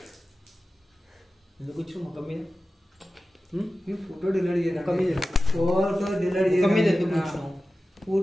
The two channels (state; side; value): normal; both; correlation 0.94